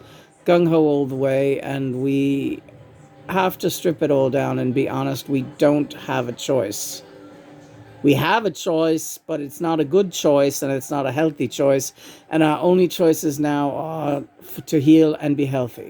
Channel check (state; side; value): identical; both; correlation 1.00